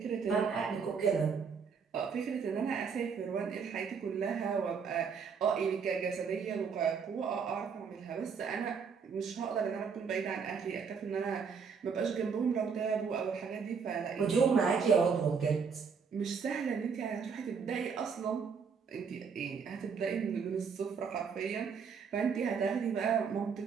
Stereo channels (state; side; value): quieter; left; 6.0 dB